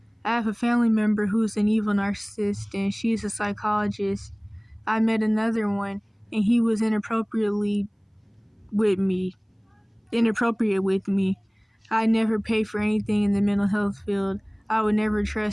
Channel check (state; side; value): identical; both; correlation 1.00